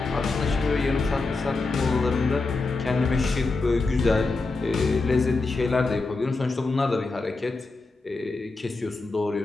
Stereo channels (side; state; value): right; quieter; 3.6 dB